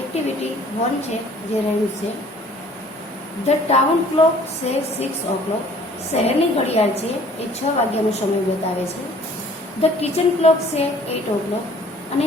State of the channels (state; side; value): normal; both; correlation 0.54